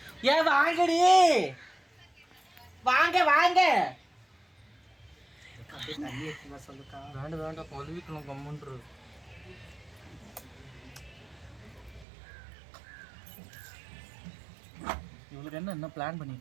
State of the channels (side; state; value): left; drops out; at 12.1 s